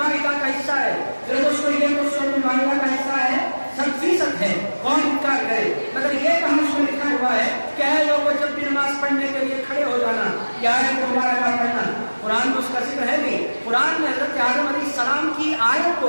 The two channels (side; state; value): both; inverted; correlation -1.00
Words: کا حصہ ہے. میرے دوستو, یہ تو سورۃ المائدہ کا حصہ ہے, 100% ہے. کون انکار کرے؟ مگر یہ کہاں اس میں لکھا ہوا ہے کہ اے لوگوں جب بھی نماز پڑھنے کے لیے کھڑے ہو جانا, کیا ہے تمہارا کام پڑھنا. قرآن میں اس کا ذکر ہے نہیں. قرآن میں حضرت آدم علیہ السلام کی آیت